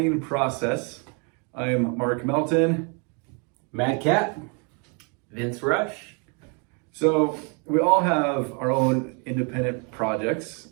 process. I am Mark Melton. Mad Cat. Vince Rush. So we all have our own independent projects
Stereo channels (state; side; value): quieter; left; 35.8 dB